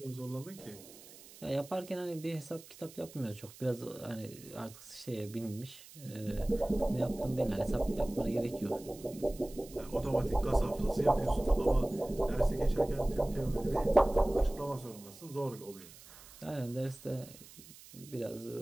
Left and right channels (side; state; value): right; noise; hiss, 19 dB below the sound